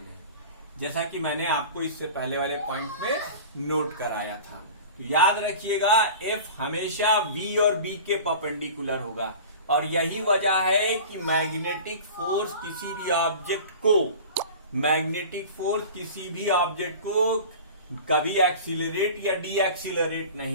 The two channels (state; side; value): inverted; both; correlation -0.37